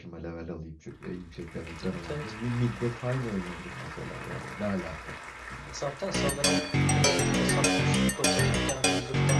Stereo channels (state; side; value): identical; both; correlation 1.00